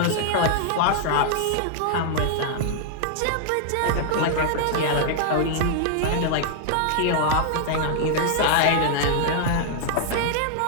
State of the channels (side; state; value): both; different; correlation -0.01